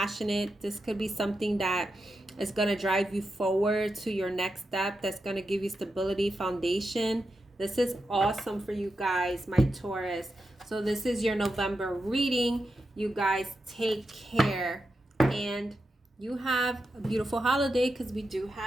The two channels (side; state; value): both; normal; correlation 0.88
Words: This could be something that is going to drive you forward to your next step. That's going to give you stability, foundation. This is awesome for you guys, my Taurus. So this is your November reading. You guys take care. And you have a beautiful holiday, because we do